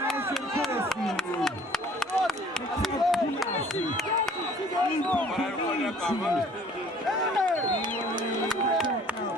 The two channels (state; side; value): normal; both; correlation 0.53